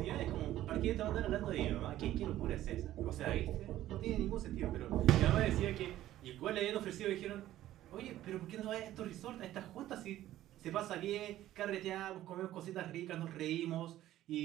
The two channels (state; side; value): quieter; left; 13.8 dB